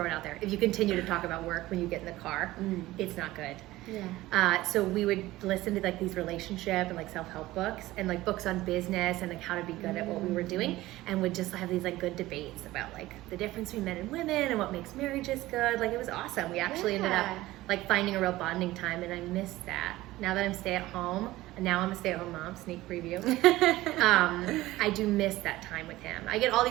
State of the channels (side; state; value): left; quieter; 17.3 dB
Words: it out there. If you continue to talk about work when you get in the car, it's not good. Yeah. So we would listen to like these relationship and like self-help books and like books on business and like how to be good at what we were doing, and would just have these like good debates about like the difference between men and women and what makes marriages good. Like it was awesome. We actually ended up like finding a real bonding time, and I miss that. Now that I'm stay-at-home, and now I'm a stay-at-home mom, sneak preview, I do miss that time with him. I get all